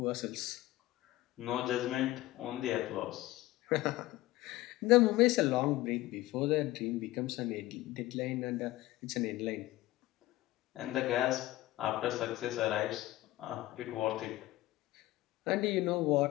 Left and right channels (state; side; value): quieter; right; 17.3 dB